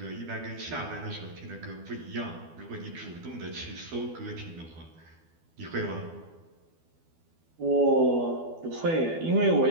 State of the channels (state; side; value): late; left; 12 ms